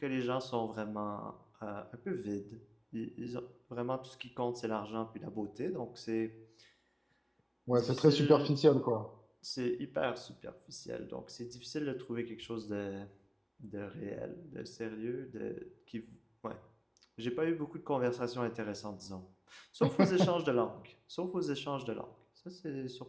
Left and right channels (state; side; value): identical; both; correlation 1.00